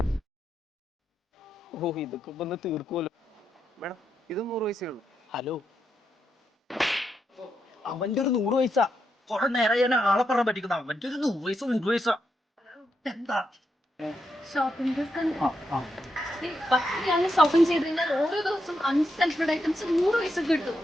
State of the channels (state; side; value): normal; both; correlation 0.83